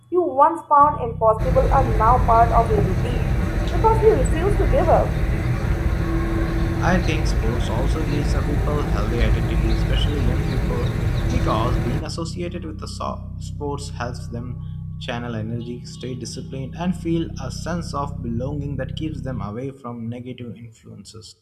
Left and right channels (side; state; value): both; identical; correlation 1.00